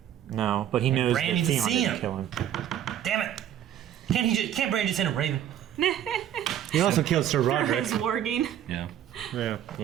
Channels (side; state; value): left; quieter; 10.7 dB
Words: No, but he knows Bran that needs to Theon see didn't him. kill him. Damn it! Can't Bran just send a raven? He also killed Sir For Roderick. his warging. Yeah. Yeah.